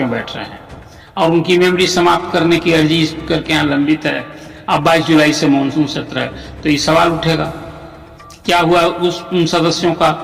बैठ रहे हैं। और उनकी मेमोरी समाप्त करने की अर्जी स्पीकर के यहाँ लंबित है। अब 22 जुलाई से मानसून सत्र है, तो ये सवाल उठेगा क्या हुआ उन सदस्यों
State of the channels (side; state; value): both; identical; correlation 1.00